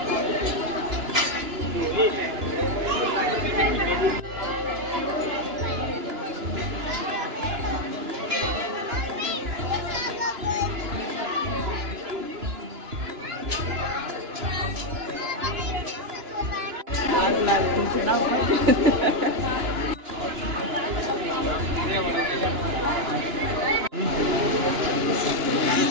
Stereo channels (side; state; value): left; late; 2.9 ms